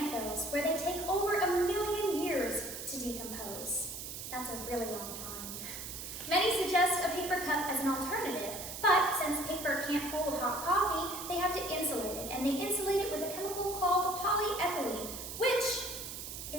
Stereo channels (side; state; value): right; noise; hiss, 8 dB below the sound